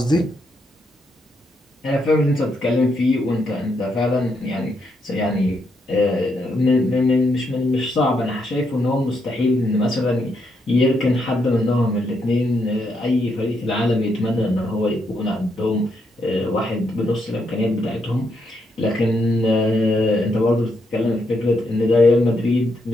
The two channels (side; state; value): both; normal; correlation 0.79